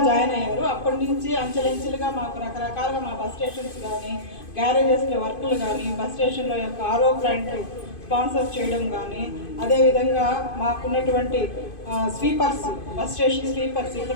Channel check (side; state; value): right; late; 2.5 ms